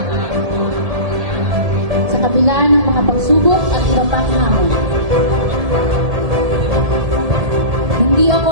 Sa kabila ng mga pagsubok at hirapang hamon. Hindi ako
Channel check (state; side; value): late; left; 1.7 ms